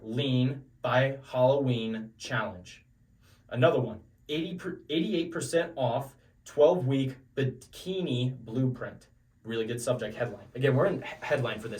lean by Halloween challenge. Another one, 88% off 12-week bikini blueprint. Really good subject headline. Again, we're in headline for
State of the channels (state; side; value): identical; both; correlation 1.00